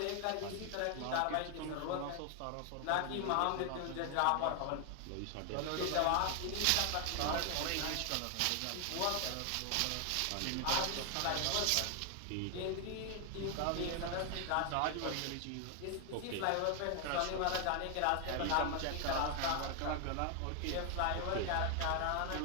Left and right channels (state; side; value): different; both; correlation 0.00